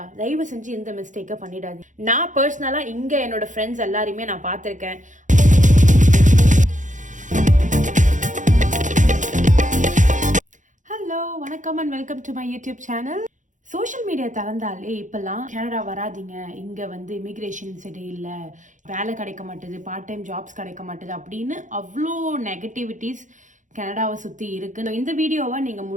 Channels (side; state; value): left; late; 0.36 ms